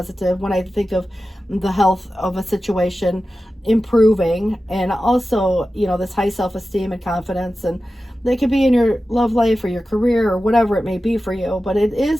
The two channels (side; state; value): both; normal; correlation 0.94